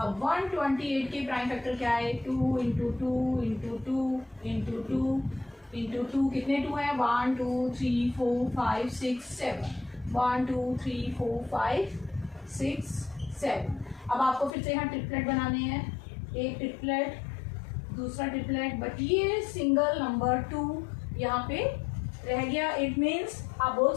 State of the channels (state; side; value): drops out; right; at 14.6 s